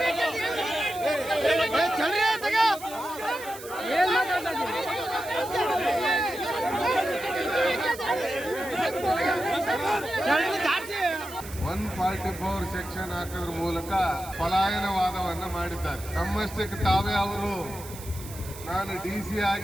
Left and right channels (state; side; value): noise; right; hiss, 15 dB below the sound